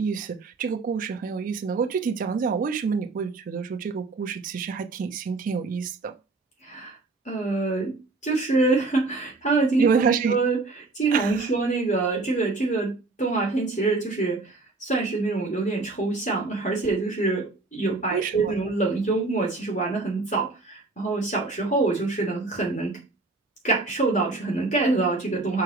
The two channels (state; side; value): quieter; left; 3.5 dB